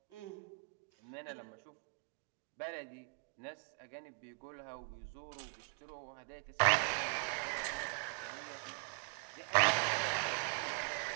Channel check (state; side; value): quieter; left; 37.5 dB